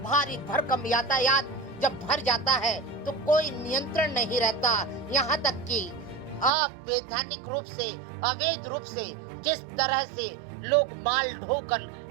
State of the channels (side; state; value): left; drops out; at 6.5 s